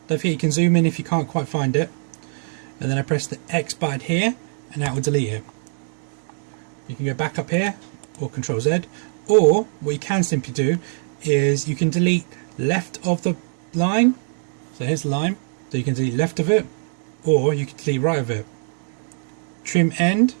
Don't forget you can zoom in if you can't quite find it. And then I press the X button here, and that will delete it. You can go back up here, or Control Z. Or what you can simply do is you can delete left of the line. So here's the line. So you can delete left of it, or you can delete right of it. Trim end,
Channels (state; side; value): silent; left; 57 dB below the other